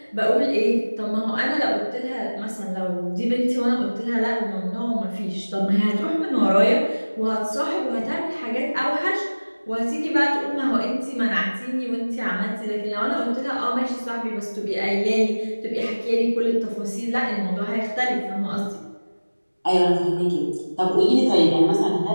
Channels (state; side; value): inverted; both; correlation -1.00